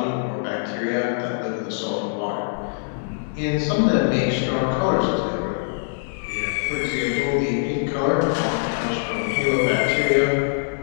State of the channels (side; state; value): right; silent; digital silence